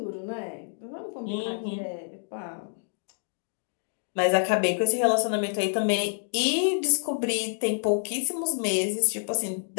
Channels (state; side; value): silent; right; digital silence